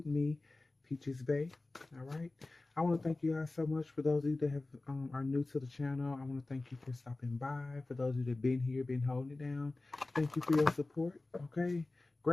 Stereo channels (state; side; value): quieter; right; 3.1 dB